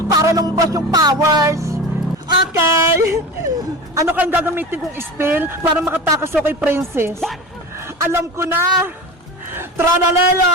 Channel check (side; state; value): both; normal; correlation 0.30